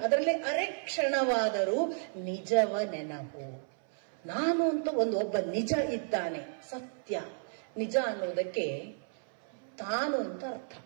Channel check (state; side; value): silent; left; 56 dB below the other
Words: ಅದರಲ್ಲಿ ಅರೆ ಕ್ಷಣವಾದರೂ ನಿಜವ ನೆನಪು. ನಾನು ಅಂತ ಒಬ್ಬ ನಿಜ ಇದ್ದಾನೆ, ಸತ್ಯ. ನಿಜ ಅನ್ನೋದಕ್ಕೆ ತಾನು ಅಂತ ಅರ್ಥ.